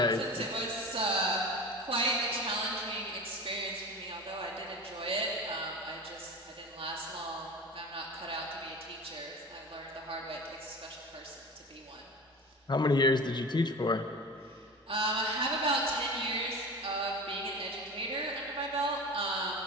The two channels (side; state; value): both; normal; correlation 0.33